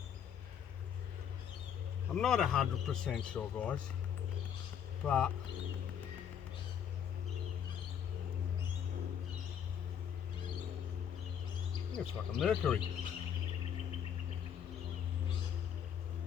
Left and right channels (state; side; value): quieter; right; 8.5 dB